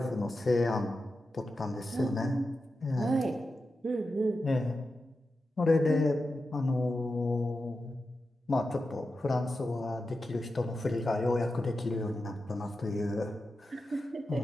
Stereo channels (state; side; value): normal; both; correlation 0.90